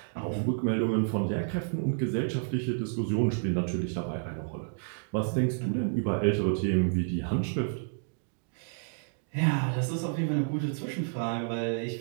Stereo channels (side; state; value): left; silent; digital silence